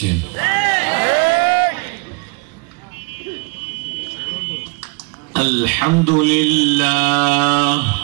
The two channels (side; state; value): left; quieter; 31.1 dB